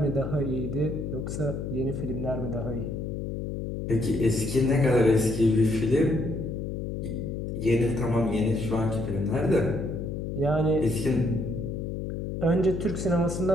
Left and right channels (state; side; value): noise; left; hum, 4 dB below the sound